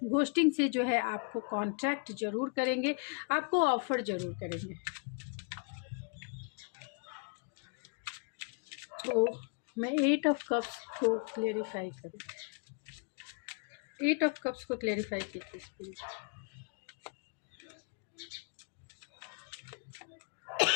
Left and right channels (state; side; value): quieter; right; 38.7 dB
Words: घोस्टिंग से जो है आपको कॉन्ट्रैक्ट ज़रूर करेंगे, आपको ऑफ़र ज़रूर करेंगे। तो मैं 8 ऑफ कप्स को क्लेरिफाई करूँ, 8 ऑफ कप्स को क्लेरिफाई कीजिए स्पिरिट।